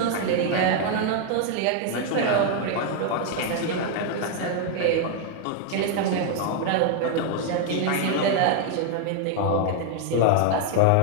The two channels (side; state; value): both; different; correlation 0.00